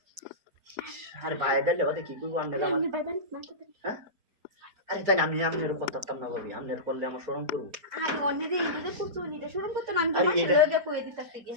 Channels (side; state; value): left; late; 4.7 ms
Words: আরে ভাই দিলে বাদে কি করব আমনে আমার হ্যাঁ আরে তাই আমি আমনের করতাম না ভাবি আমনের করলে আমার শরম করব আরে অন্যদের ইন্দ্রদের করছো নিতে শরম করতে না আমি তোমার লগে কই দিতাম থেকে